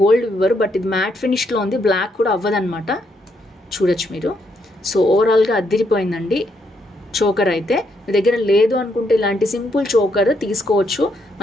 గోల్డ్ ఇవ్వరు, బట్ ఇది మ్యాట్ ఫినిష్లో ఉంది. బ్లాక్ కూడా అవ్వదన్నమాట, చూడొచ్చు మీరు. సో ఓవరాల్గా అద్దిరిపోయిందండి చోకర్ అయితే. మీ దగ్గర లేదు అనుకుంటే ఇలాంటి సింపుల్ చోకర్ తీసుకోవచ్చు.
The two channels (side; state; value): both; normal; correlation 0.76